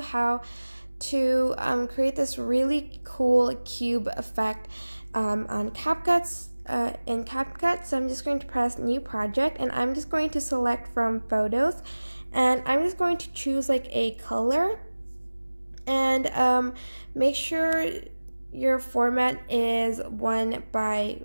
to create this really cool cube effect on CapCut. In CapCut, so I'm just going to press New Project, and I'm just going to select from Photos, and I'm just going to choose like a color, and make sure your format is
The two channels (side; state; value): both; inverted; correlation -1.00